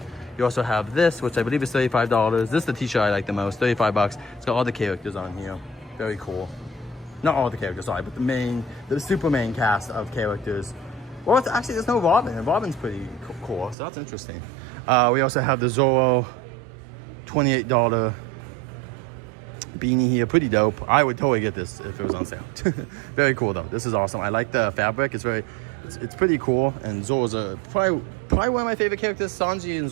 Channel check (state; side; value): drops out; left; at 13.8 s